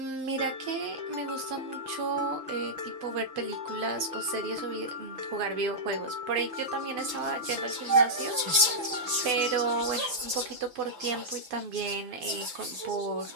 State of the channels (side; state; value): left; late; 6.0 ms